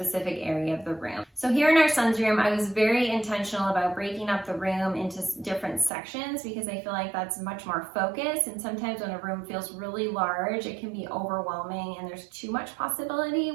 area of the room. So here in our son's room, I was very intentional about breaking up the room into different sections because I feel like that's much more focused. And sometimes when a room feels really large, it can be overwhelming and there's too much possibility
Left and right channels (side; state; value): left; drops out; at 5.9 s